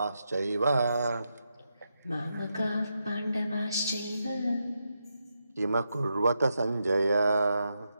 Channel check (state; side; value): inverted; both; correlation -0.85